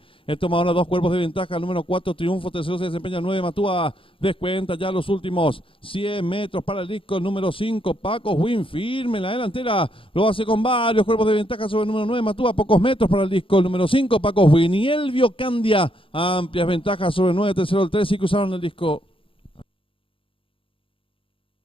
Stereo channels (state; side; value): late; right; 0.26 ms